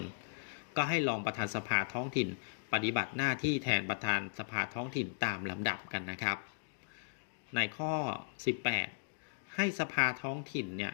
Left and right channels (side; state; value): right; silent; digital silence